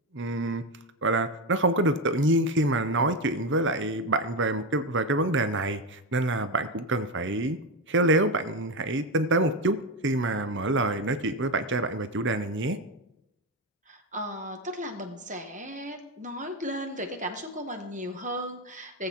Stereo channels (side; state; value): both; normal; correlation 0.13